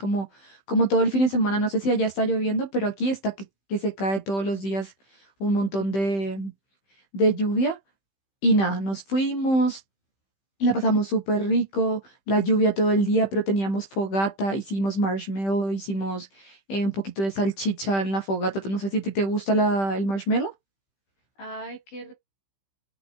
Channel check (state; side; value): late; right; 15 ms